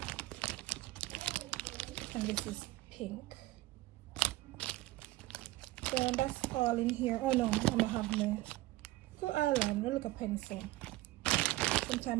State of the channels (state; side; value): quieter; left; 18.2 dB